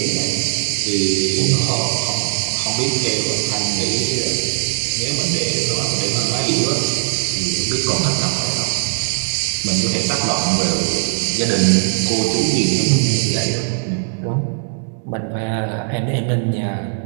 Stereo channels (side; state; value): left; silent; digital silence